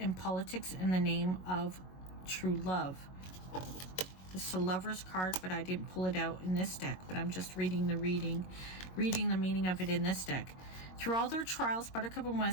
politics in the name of true love. This is a Lover's card, but I didn't pull it out in this deck, but I'm just reading the meaning of it in this deck. Through all their trials, Buttercup and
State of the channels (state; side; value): late; right; 22 ms